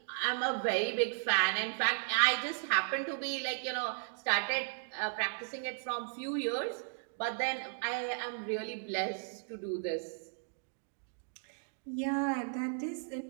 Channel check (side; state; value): left; silent; digital silence